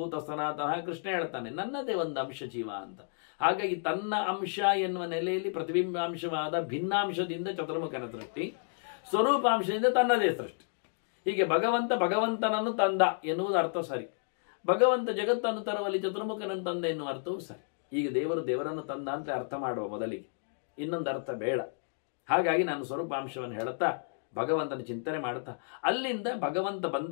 ಸನಾತನ. ಕೃಷ್ಣ ಹೇಳ್ತಾನೆ ನನ್ನದೇ ಒಂದು ಅಂಶ ಜೀವ ಅಂತ. ಹಾಗಾಗಿ ತನ್ನ ಅಂಶ ಎನ್ನುವ ನೆಲೆಯಲ್ಲಿ ಪ್ರತಿಬಿಂಬಾಂಶವಾದ ಭಿನ್ನಾಂಶದಿಂದ ಚತುರ್ಮುಖನ ಸೃಷ್ಟಿ, ಸ್ವರೂಪಾಂಶದಿಂದ ತನ್ನದೇ ಸೃಷ್ಟಿ. ಹೀಗೆ ಭಗವಂತನನ್ನು ತಂದ ಎನ್ನುವುದು ಅರ್ಥ ಸರಿ. ಭಗವಂತ ಜಗತ್ತನ್ನು ತರುವಲ್ಲಿ ಚತುರ್ಮುಖನನ್ನು ತಂದ ಎನ್ನುವ ಅರ್ಥವೂ ಸರಿ. ಈಗ ದೇವರನ್ನು ತಂದ ಅಂತ ಅರ್ಥ ಮಾಡುವ ಮೊದಲಿಗೆ, ಇನ್ನೊಂದು ಅರ್ಥ ಬೇಡ. ಹಾಗಾಗಿ ನಾನು ಸ್ವರೂಪಾಂಶವನ್ನು ಹೇಳುತ್ತಾ ಭಗವಂತನ ಚಿಂತನೆ ಮಾಡುತ್ತಾ, ಅಲ್ಲಿಂದ ಭಗವಂತ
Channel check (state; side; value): silent; right; digital silence